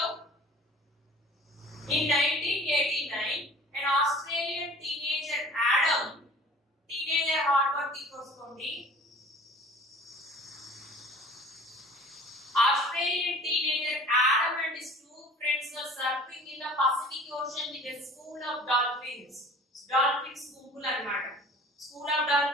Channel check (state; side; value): normal; both; correlation 0.46